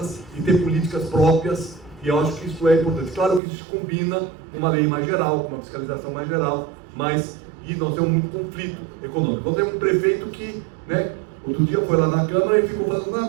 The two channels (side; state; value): left; drops out; at 3.4 s